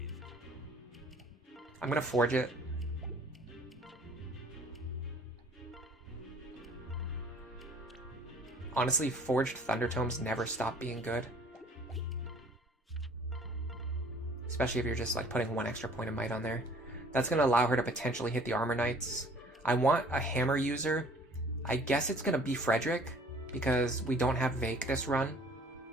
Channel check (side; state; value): both; normal; correlation 0.53